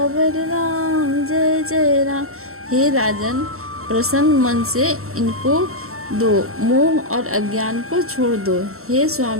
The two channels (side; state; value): left; late; 0.63 ms